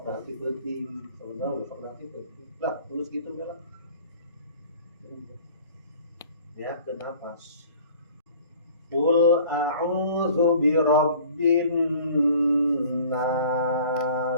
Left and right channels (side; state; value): both; inverted; correlation -0.49